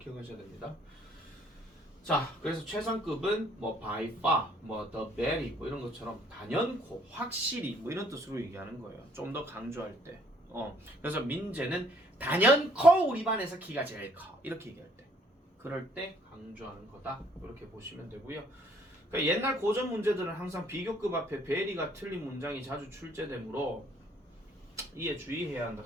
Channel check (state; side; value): normal; both; correlation 0.63